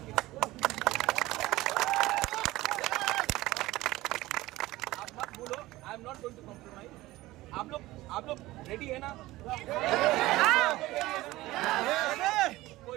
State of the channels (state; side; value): quieter; left; 18.0 dB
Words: के। आप मत बोलो I am not going to compromise. आप लोग रेडी है ना?